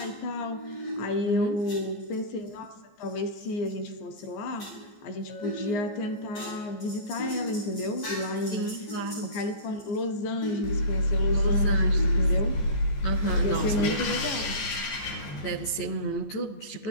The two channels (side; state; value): right; late; 14 ms